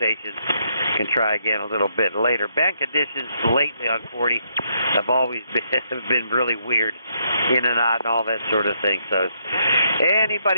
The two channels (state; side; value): inverted; both; correlation -0.75